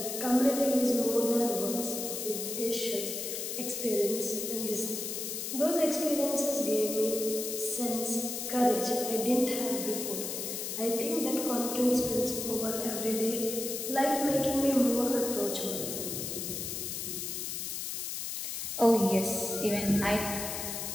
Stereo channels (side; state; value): left; noise; hiss, 4 dB below the sound